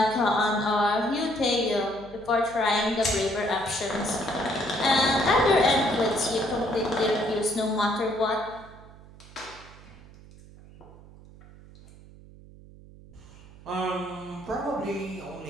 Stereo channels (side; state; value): right; noise; hum, 21 dB below the sound